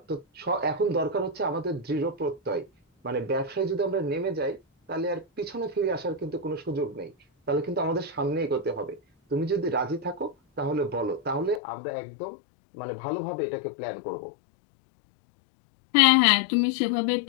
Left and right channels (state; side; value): drops out; right; at 11.6 s